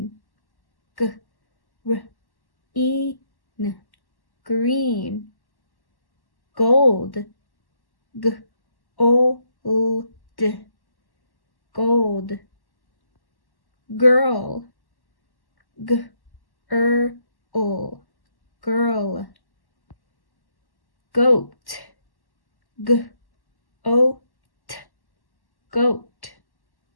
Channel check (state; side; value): late; right; 1.1 ms